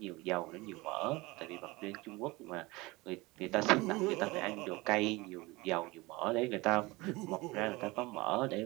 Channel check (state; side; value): quieter; left; 22.4 dB